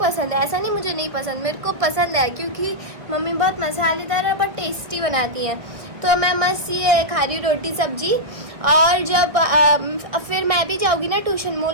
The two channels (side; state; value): left; late; 1.3 ms